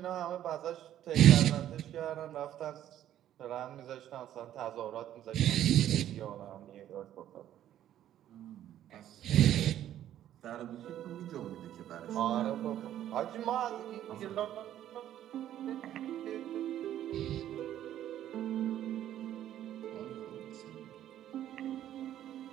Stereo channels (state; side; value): quieter; left; 11.7 dB